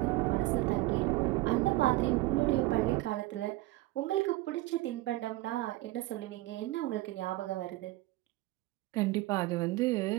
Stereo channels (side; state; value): left; quieter; 18.4 dB